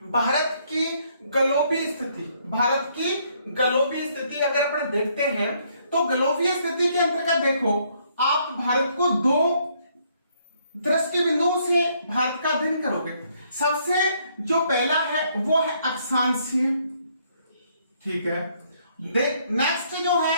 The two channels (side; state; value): both; inverted; correlation -0.69